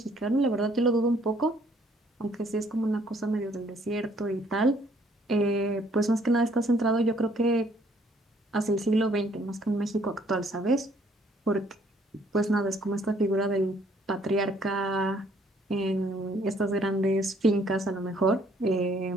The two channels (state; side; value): normal; both; correlation 0.63